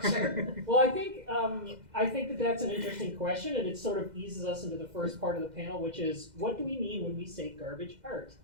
Well, I think that that's an interesting question, and it sort of eases us into the first part of the panel, which is, what do we mean when we say garbage art?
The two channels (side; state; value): left; late; 2.0 ms